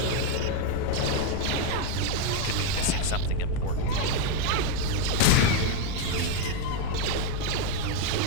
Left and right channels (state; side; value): different; both; correlation 0.02